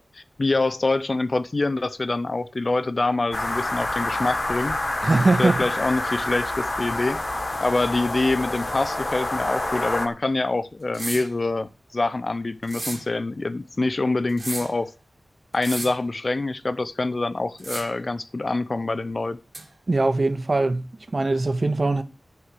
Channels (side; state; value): both; normal; correlation 0.96